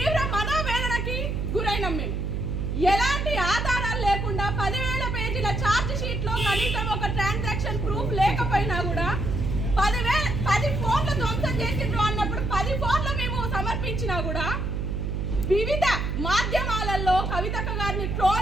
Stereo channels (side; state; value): right; noise; hum, 1 dB below the sound